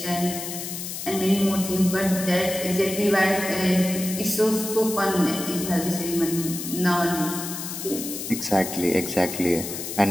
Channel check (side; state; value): left; noise; hiss, 7 dB below the sound